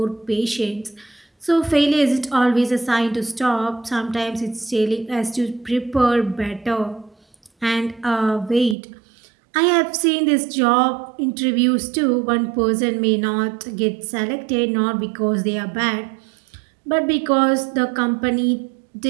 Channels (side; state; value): left; drops out; at 8.8 s